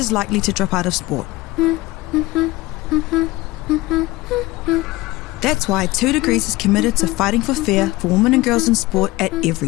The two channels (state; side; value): quieter; right; 20.0 dB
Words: likely to drop out of sport. That's why 2 Degrees is committed to fighting for fair for women and girls in sport at